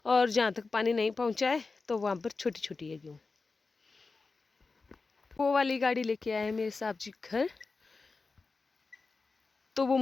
और जहाँ तक पानी नहीं पहुँचा है तो वहाँ पर छोटी छोटी है गेहूँ। वो वाली गाड़ी लेके आए हैं मेरे साहब जी घर, तो वो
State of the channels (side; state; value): right; quieter; 4.1 dB